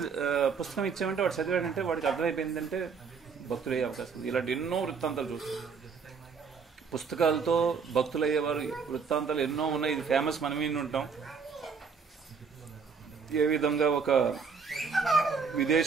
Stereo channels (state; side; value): quieter; left; 5.6 dB